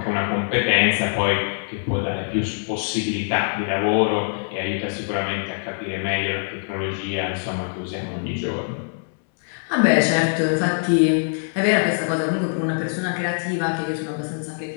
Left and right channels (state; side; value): silent; right; 63 dB below the other